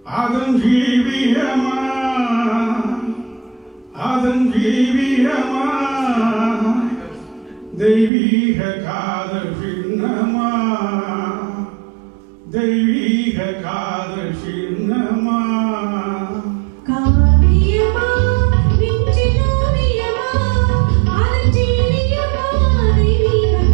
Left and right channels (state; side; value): drops out; left; at 8.1 s